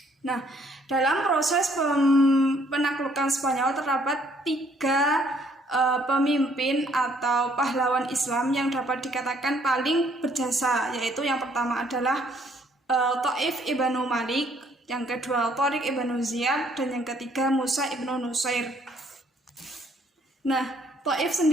Nah, dalam proses penaklukan Spanyol terdapat tiga pemimpin atau pahlawan Islam yang dapat dikatakan paling berjasa, yaitu yang pertama adalah Taif ibnu Malik, yang kedua Tariq ibnu Ziyad, dan yang ketiga Musa ibnu Nusair. Nah, Taif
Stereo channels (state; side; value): normal; both; correlation 0.65